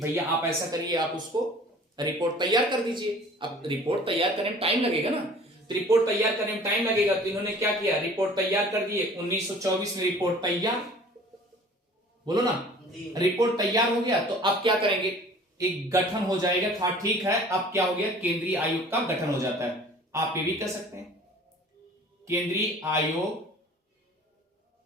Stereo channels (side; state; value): both; normal; correlation 0.48